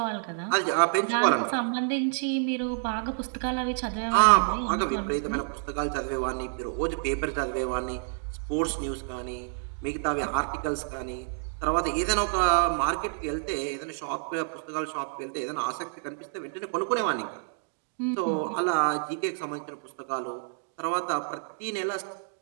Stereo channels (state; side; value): silent; left; digital silence